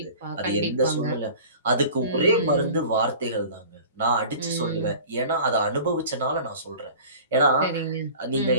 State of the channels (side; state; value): both; inverted; correlation -0.42